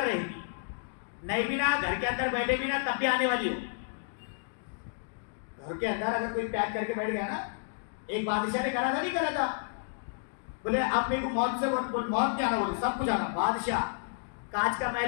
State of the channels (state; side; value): silent; right; digital silence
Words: रहेगी। नहीं भी ना, घर के अंदर बैठे भी ना, तब भी आने वाली हो। घर के अंदर अगर कोई पैक करके बैठ गया ना, एक बादशाह ने करा था, नहीं करा था, बोले अब मेरे को मौत से मौत क्या आना, बोले सब कुछ आना। बादशाह कांच का